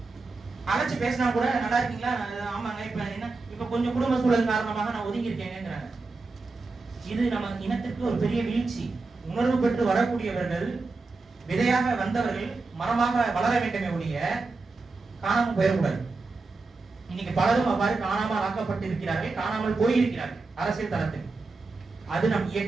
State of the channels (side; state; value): left; quieter; 3.8 dB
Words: அழைச்சு பேசினா கூட நல்லா இருக்கீங்களா, ஆமாங்க, இப்ப என்ன இப்ப கொஞ்சம் குடும்ப சூழல் காரணமாக நான் ஒதுங்கி இருக்கேங்கிறாங்க. இது நம்ம இனத்திற்கு ஒரு பெரிய வீழ்ச்சி. உணர்வு பெற்று வரக்கூடியவர்கள், விதையாக வந்தவர்கள் மரமாக வளர வேண்டுமே ஒழிய காணாமல் போயிடக்கூடாது. இன்னைக்கு பலரும் அவ்வாறு காணாமல் ஆக்கப்பட்டு இருக்கிறார்கள், காணாமல் போயிருக்கிறார்கள் அரசியல் தளத்தில். அது நம்